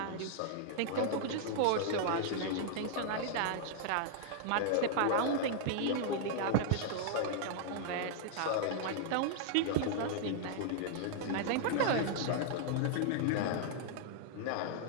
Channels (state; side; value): different; both; correlation -0.01